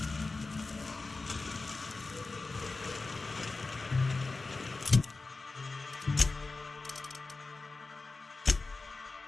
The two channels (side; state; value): right; quieter; 3.7 dB